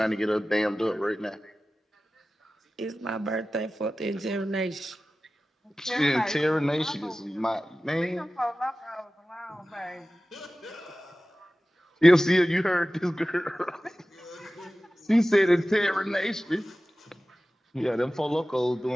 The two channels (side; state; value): both; normal; correlation 0.96